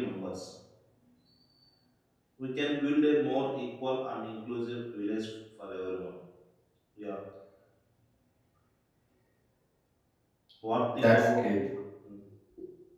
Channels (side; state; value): both; identical; correlation 1.00